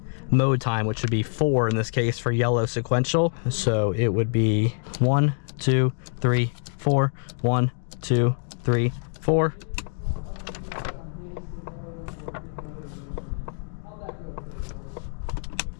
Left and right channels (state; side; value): silent; right; 60 dB below the other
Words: mode time, which would be 4 in this case for yellow sequential. So it would be 1, 2, 3, 4. 1, 2, 3, 4.